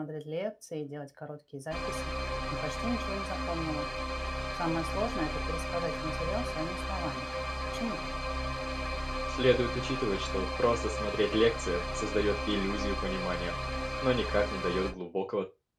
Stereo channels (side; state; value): both; identical; correlation 1.00